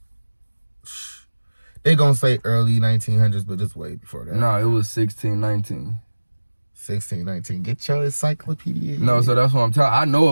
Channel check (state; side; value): inverted; both; correlation -1.00